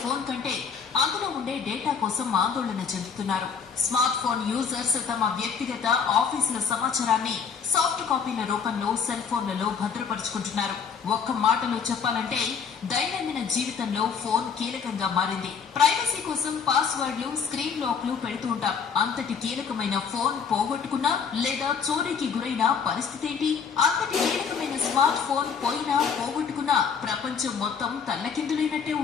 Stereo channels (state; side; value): quieter; right; 6.4 dB